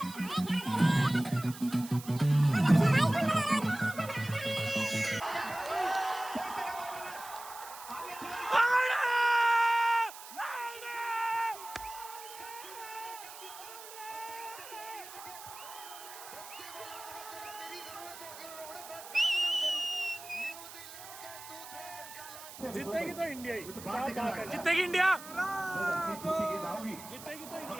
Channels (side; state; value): right; noise; hiss, 14 dB below the sound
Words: जीतेगी तो इंडिया ही, जीतेगी इंडिया, जीतेगी तो